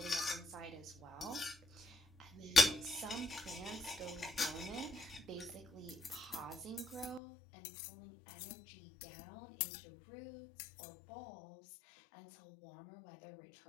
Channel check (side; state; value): right; drops out; at 7.2 s